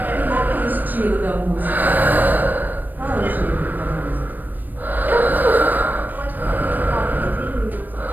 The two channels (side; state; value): left; late; 0.089 ms